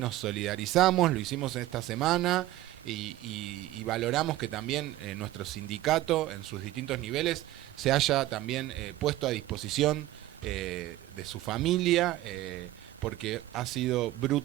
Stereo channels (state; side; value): quieter; left; 15.7 dB